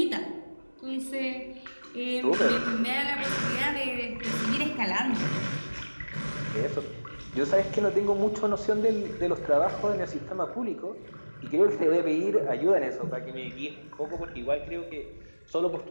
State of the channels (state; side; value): inverted; both; correlation -1.00